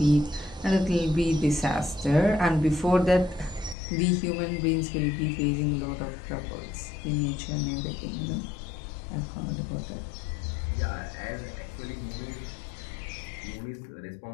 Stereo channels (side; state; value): right; drops out; at 3.8 s